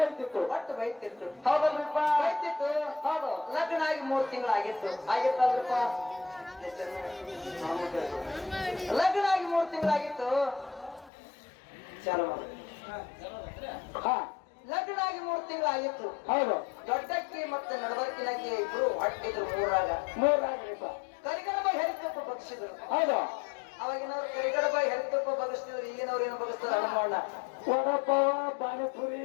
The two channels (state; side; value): drops out; right; at 11.1 s